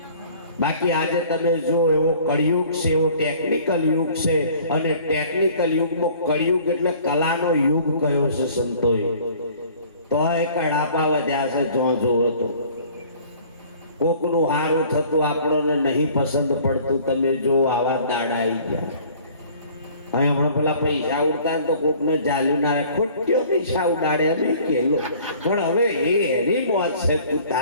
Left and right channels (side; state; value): both; inverted; correlation -0.52